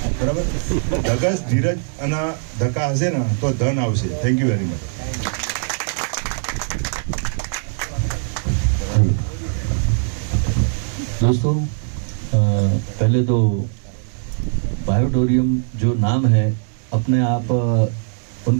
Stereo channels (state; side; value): silent; left; digital silence